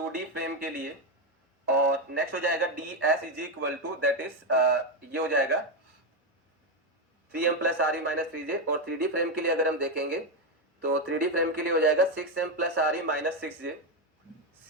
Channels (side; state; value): both; normal; correlation 0.08